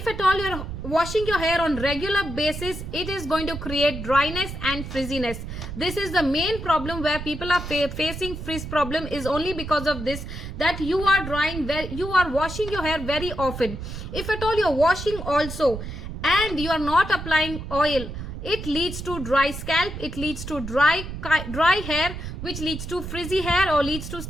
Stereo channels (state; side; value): noise; right; rumble, 8 dB below the sound